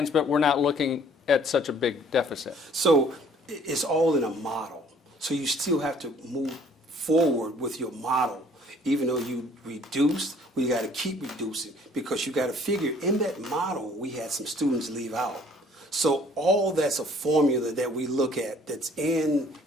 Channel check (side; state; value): both; normal; correlation 0.57